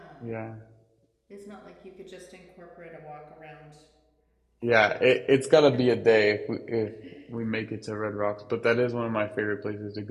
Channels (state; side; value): identical; both; correlation 1.00